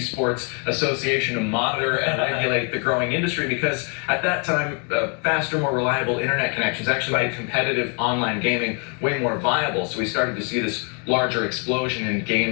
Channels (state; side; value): quieter; right; 37.9 dB